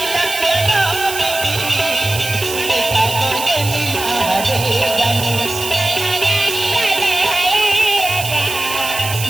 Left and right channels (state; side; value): noise; right; hiss, 7 dB below the sound